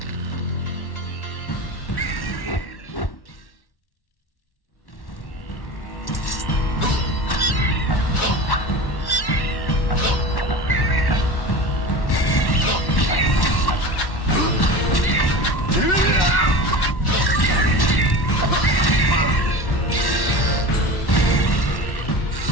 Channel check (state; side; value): late; right; 1.1 ms